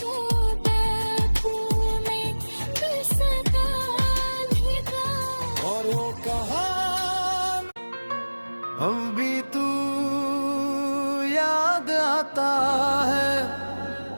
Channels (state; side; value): inverted; both; correlation -1.00